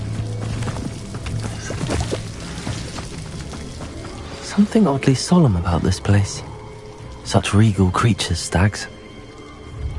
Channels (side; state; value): both; identical; correlation 1.00